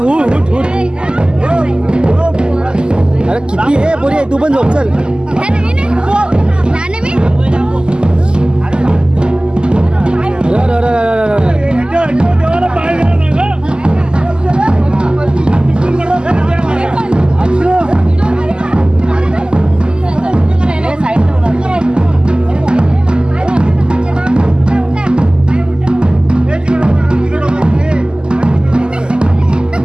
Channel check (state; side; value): late; left; 0.047 ms